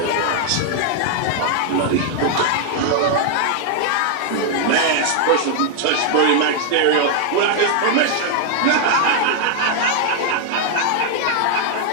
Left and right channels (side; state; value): both; different; correlation 0.00